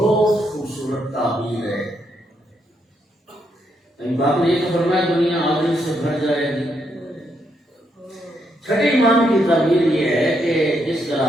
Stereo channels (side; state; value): both; normal; correlation 0.78